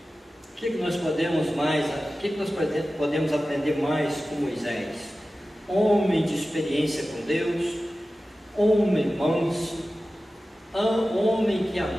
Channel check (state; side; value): normal; both; correlation 0.95